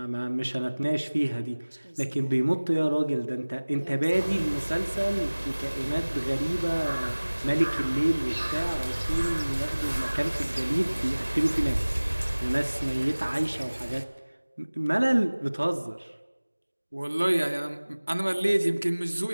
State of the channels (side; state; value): both; inverted; correlation -1.00